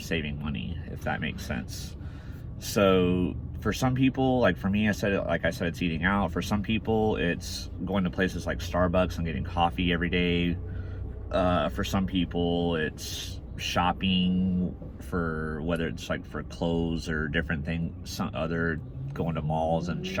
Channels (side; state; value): both; identical; correlation 1.00